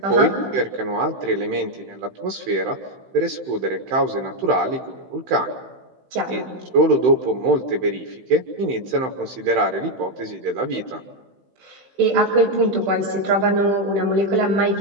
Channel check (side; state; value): left; late; 16 ms